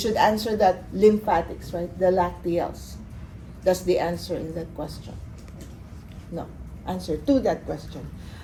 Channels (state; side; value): identical; both; correlation 1.00